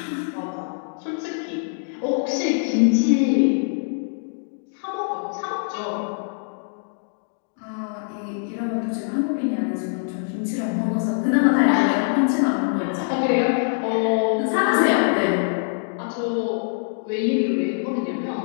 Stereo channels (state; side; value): silent; right; digital silence